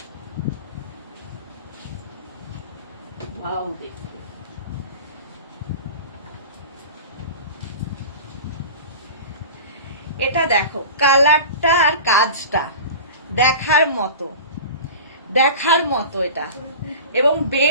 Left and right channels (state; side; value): inverted; both; correlation -0.35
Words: এটা দেখো, কালারটা আর কাজটা দেখার মতো এটা, এবং